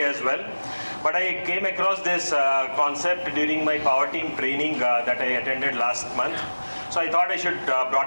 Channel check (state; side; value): inverted; both; correlation -1.00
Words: as well. But I came across this concept during my power team training that I attended last month. So I thought I should